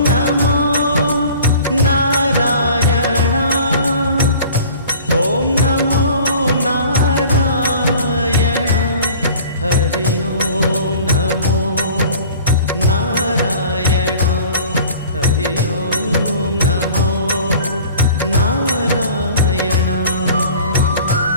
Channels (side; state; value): both; inverted; correlation -0.46